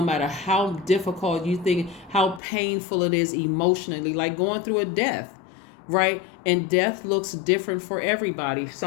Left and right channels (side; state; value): right; drops out; at 2.4 s